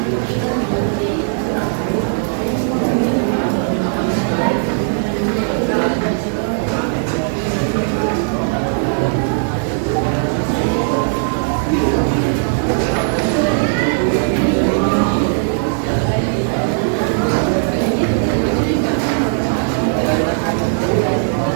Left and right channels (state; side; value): silent; left; digital silence